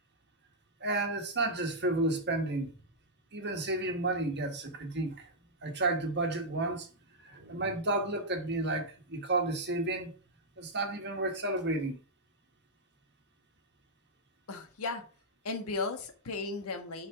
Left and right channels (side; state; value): both; normal; correlation -0.06